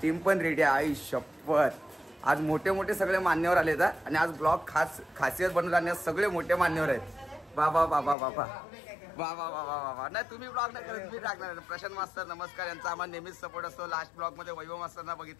टीम पण रेडी आहे। आई शपथ, आज मोठे मोठे सगळे मान्यवर आले आहेत आणि आज ब्लॉग खासियत बनवून आणण्यास सगळे मोठे मान्यवर आहेत। बाबा बाबा बाबा बाबा बाबा बाबा, नाही तुम्ही ब्लॉग नाही करत, मी टाकणार। प्रशांत मास्तर नमस्कार, यांचा आम्हाला नेहमीच सपोर्ट असतो। लास्ट ब्लॉग मध्ये वैभव मास्तरना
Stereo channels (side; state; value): right; drops out; at 8.2 s